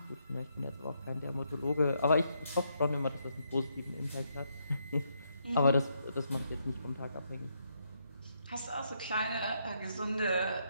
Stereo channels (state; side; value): inverted; both; correlation -0.77